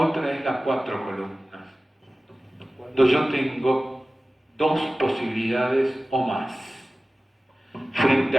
otra es las 4 columnas. Cuando yo tengo 2 posibilidades o más. Frente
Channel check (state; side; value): normal; both; correlation 0.97